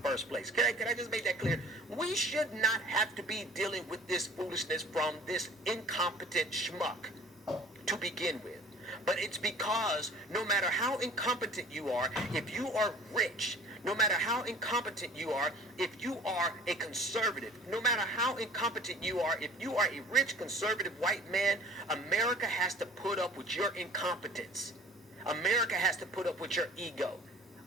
place. Can I just make that clear? We should not have to be dealing with this foolishness from this incompetent schmuck to begin with. But it's because no matter how incompetent you are, if you are rich, no matter how incompetent you are, if you are a conservative, no matter how incompetent you are, if you are a rich, conservative white man, America has to put up with your incompetence. America has to put up with your ego.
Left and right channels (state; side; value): normal; both; correlation 0.49